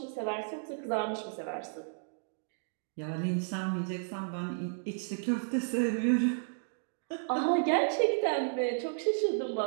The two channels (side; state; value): left; silent; digital silence